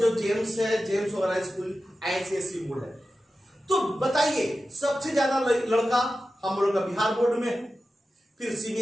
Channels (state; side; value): normal; both; correlation 0.93